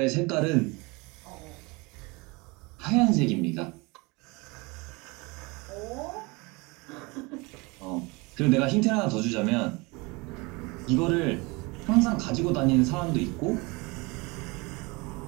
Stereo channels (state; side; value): quieter; left; 26.2 dB